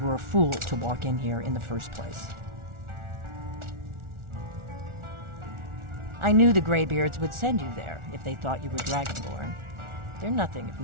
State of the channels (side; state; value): left; late; 1.4 ms